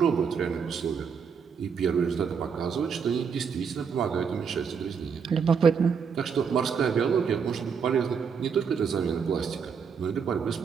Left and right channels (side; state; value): left; quieter; 6.4 dB